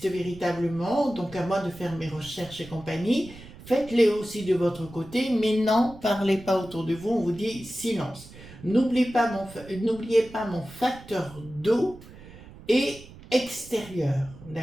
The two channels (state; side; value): noise; right; rumble, 18 dB below the sound